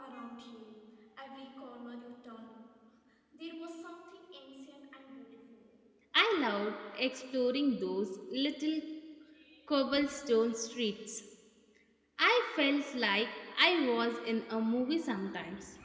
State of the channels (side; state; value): both; identical; correlation 1.00